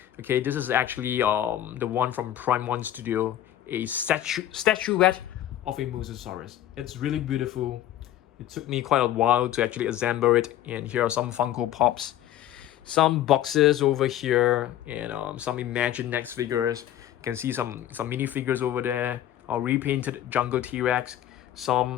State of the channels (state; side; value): quieter; right; 12.1 dB